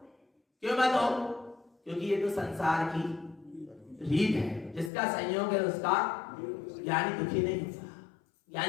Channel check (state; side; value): drops out; right; at 4.9 s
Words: क्यों मत हो, क्योंकि ये तो संसार की रीत है, जिसका संयोग है उसका ज्ञानी दुखी नहीं होता।